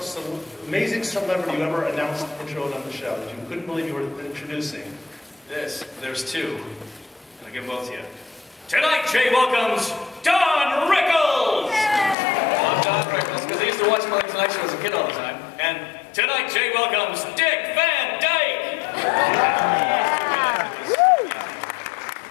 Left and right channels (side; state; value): right; drops out; at 12.2 s